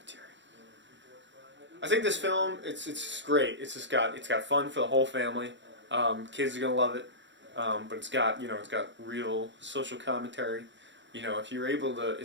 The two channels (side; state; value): left; late; 0.53 ms